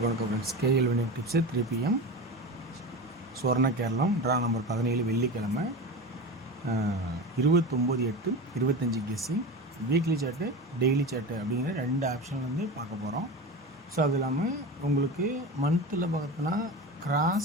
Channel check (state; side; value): normal; both; correlation 0.27